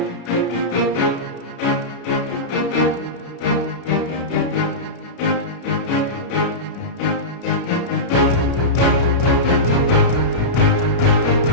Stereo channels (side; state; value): right; late; 33 ms